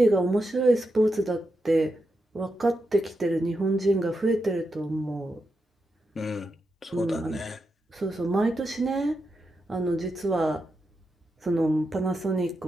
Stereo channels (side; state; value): both; normal; correlation 0.87